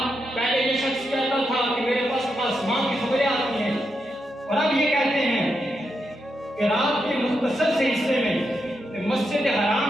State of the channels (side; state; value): both; normal; correlation 0.84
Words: پہلے یہ شخص کہتا تھا کہ میرے پاس آسمان کی خبریں آتی ہیں، اور اب یہ کہتے ہیں کہ رات کے مختصر سے حصے میں مسجد